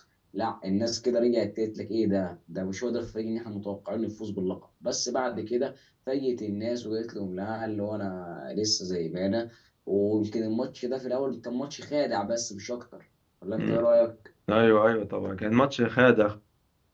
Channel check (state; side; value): identical; both; correlation 1.00